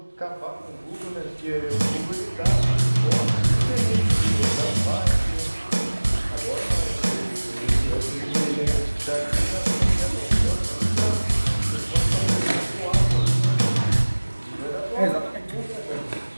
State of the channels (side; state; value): both; inverted; correlation -1.00